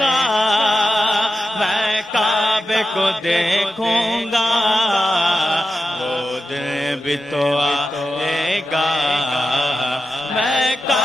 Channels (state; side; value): normal; both; correlation 0.90